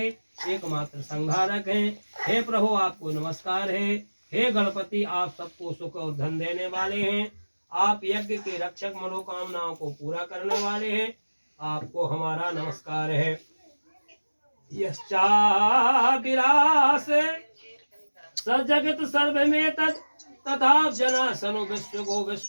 एकमात्र संहारक हैं। हे प्रभु आपको नमस्कार है। हे गणपति आप सबको सुख और धन देने वाले हैं। आप यज्ञ के रक्षक मनोकामनाओं को पूरा करने वाले हैं। आपको हमारा नमस्कार है। यश्चाविरास सजगत सर्वमेतत् तथा जना सनु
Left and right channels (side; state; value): both; inverted; correlation -1.00